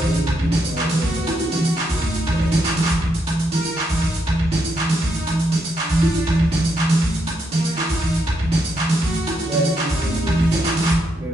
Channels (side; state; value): both; normal; correlation 0.79